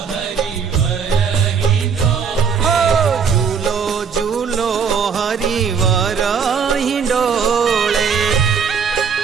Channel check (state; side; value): quieter; left; 6.4 dB